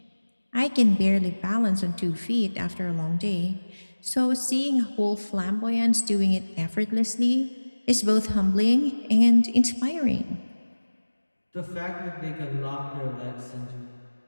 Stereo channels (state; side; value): inverted; both; correlation -1.00